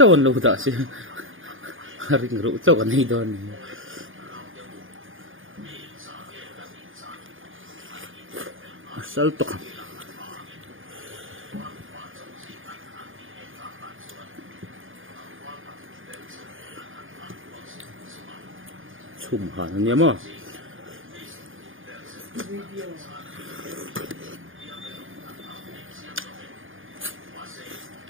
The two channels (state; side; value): late; left; 0.58 ms